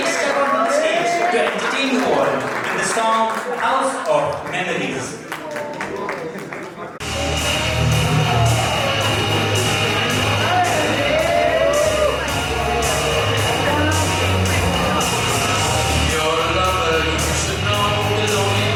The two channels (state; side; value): identical; both; correlation 1.00